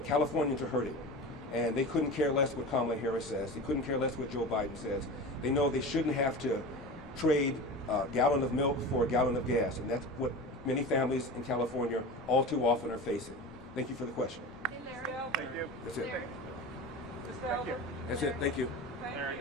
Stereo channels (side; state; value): both; normal; correlation 0.30